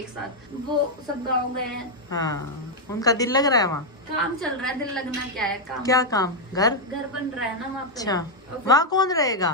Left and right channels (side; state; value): both; normal; correlation 0.00